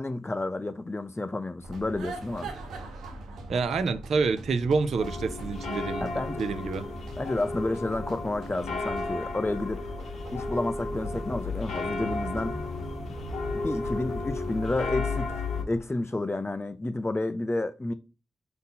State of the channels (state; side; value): normal; both; correlation 0.87